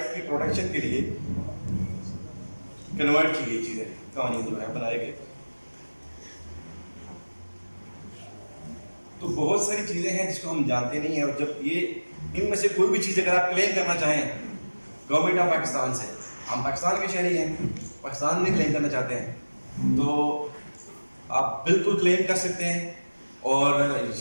کی پروٹیکشن کے لیے کنورٹ کی گئی چیزیں, قوانین جو ہے بنائے گئے. تو بہت ساری چیزیں ہیں جس کو ہم جانتے نہیں ہیں, اور جب یہ ان میں سے کوئی بھی چیز اگر آپ کلیم کرنا چاہیں گورنمنٹ آف پاکستان سے, ہم پاکستان کے شہری ہیں, پاکستان میں کلیم کرنا چاہتے ہیں تو آپ بالکل کلیم کر سکتے ہیں. اور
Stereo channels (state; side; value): inverted; both; correlation -1.00